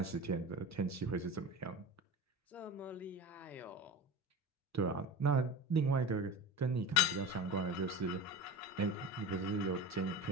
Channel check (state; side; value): normal; both; correlation 0.30